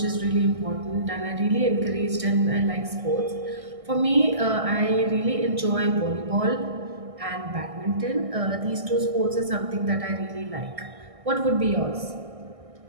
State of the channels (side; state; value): left; late; 1.6 ms